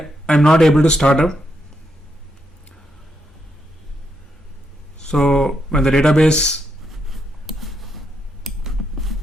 not able to start up. So when the database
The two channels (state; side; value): normal; both; correlation 0.80